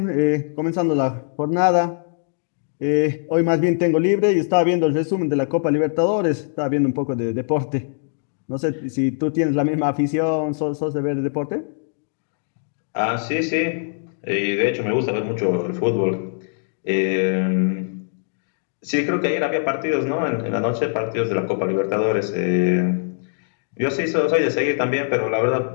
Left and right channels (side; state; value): right; silent; digital silence